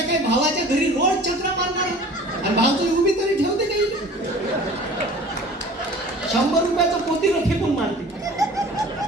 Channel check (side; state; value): both; normal; correlation 0.45